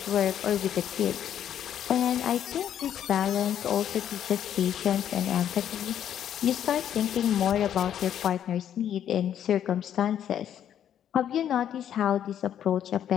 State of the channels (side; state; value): right; quieter; 10.0 dB